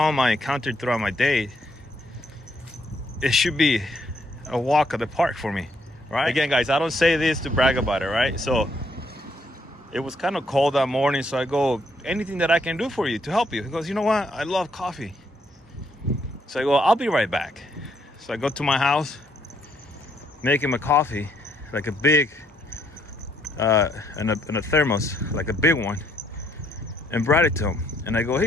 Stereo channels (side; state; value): both; normal; correlation 0.71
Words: I encountered throughout my day, it should be a walk of the park for me, right? Again, guys, I don't say this to brag about it, right? So it was kind of cold that morning, so I go, anything that I can do for you to help you? He goes, you know what? I love coffee. So I go, I'll be right back. So I go to my house, make him a coffee, like a big, in a thermos, like a big one, and brought it to him. And I go,